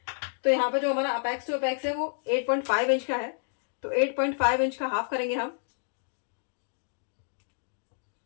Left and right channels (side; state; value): right; silent; digital silence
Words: तो यहाँ पे जो हमारा अपेक्स टू अपेक्स है वो 8.5 इंच का है, तो 8.5 इंच का हाफ करेंगे हम।